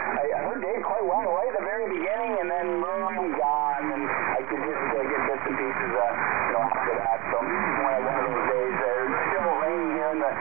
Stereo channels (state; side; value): quieter; left; 25.0 dB